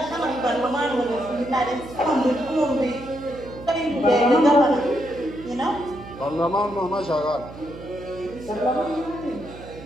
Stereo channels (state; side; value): noise; right; hum, 15 dB below the sound